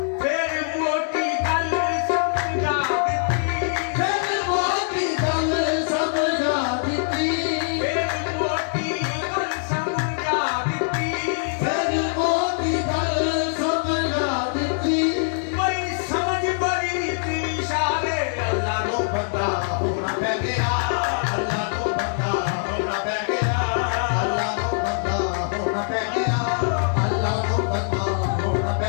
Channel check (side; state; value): right; silent; digital silence